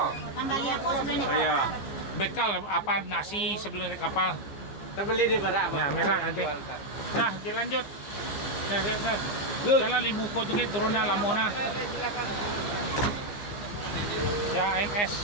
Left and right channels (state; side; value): late; right; 15 ms